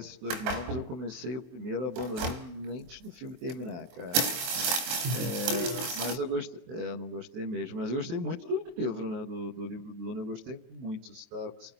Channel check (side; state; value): left; late; 24 ms